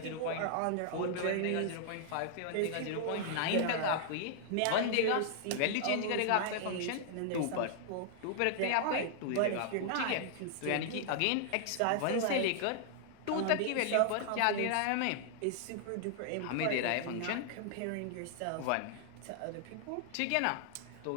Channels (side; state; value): both; different; correlation -0.01